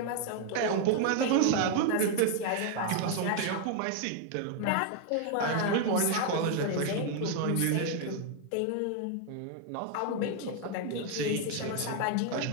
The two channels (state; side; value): different; both; correlation 0.00